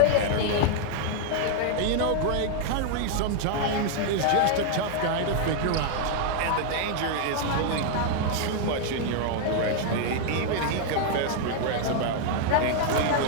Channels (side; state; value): both; different; correlation 0.00